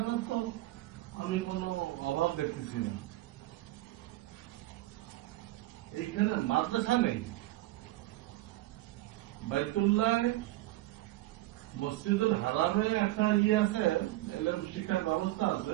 তো আমি কোনো অভাব দেখতেছি না, এইখানে মাদ্রাসা নেই, বাইতুল্লাহ মসজিদুল হারামে একটা আছে, এলএম শিক্ষার ব্যবস্থা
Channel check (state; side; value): quieter; left; 17.3 dB